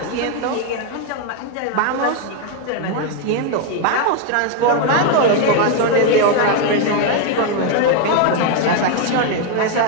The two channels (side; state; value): both; different; correlation 0.01